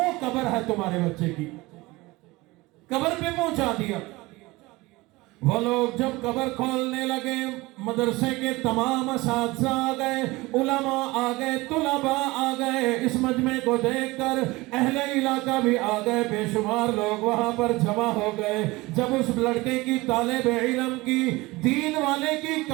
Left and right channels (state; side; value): quieter; left; 21.4 dB